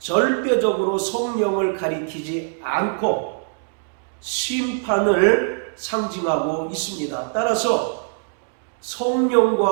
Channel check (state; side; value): silent; left; digital silence